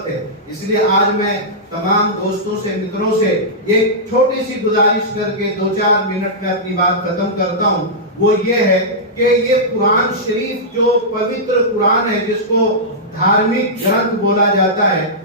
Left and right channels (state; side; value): normal; both; correlation -0.12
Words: है। इसलिए आज मैं तमाम दोस्तों से, मित्रों से एक छोटी सी गुजारिश करके 2-4 मिनट में अपनी बात खत्म करता हूं। वो ये है कि ये कुरान शरीफ जो पवित्र कुरान है, जिसको धार्मिक ग्रंथ बोला जाता है,